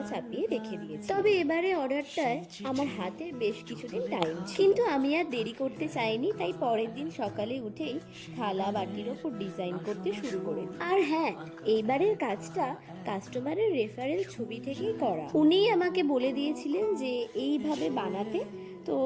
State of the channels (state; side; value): identical; both; correlation 1.00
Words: চাপিয়ে রেখে দিয়েছি। তবে এবারে অর্ডারটায় আমার হাতে বেশ কিছুদিন টাইম ছিল, কিন্তু আমি আর দেরি করতে চাইনি। তাই পরের দিন সকালে উঠেই থালা বাটির ওপর ডিজাইন করতে শুরু করে দিই। আর হ্যাঁ, এইবারের কাজটা কাস্টমারের রেফারেল ছবি থেকেই করা। উনিই আমাকে বলে দিয়েছিলেন যে এইভাবে বানাতে, তো